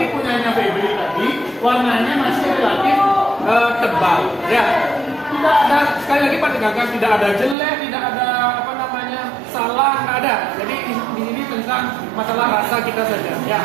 punyanya Febri tadi, warnanya masih relatif tebal, ya. Tidak ada, sekali lagi Pak tekankan, tidak ada jelek, tidak ada apa namanya salah, nggak ada. Jadi di sini tentang masalah rasa kita saja, ya.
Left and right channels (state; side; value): drops out; left; at 7.6 s